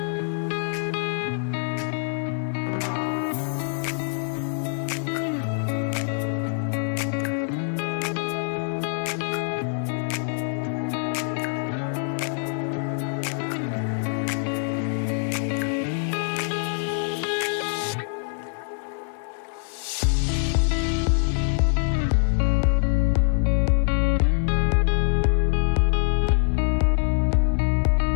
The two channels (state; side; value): silent; right; 61 dB below the other